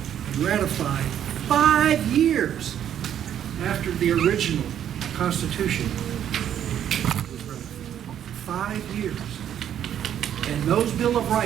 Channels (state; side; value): quieter; left; 10.0 dB